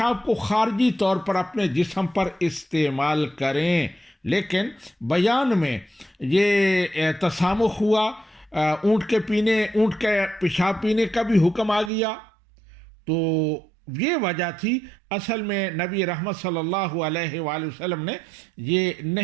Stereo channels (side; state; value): left; drops out; at 11.9 s